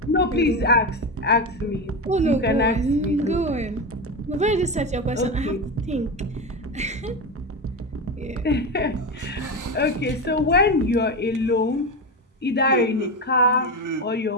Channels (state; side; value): normal; both; correlation 0.18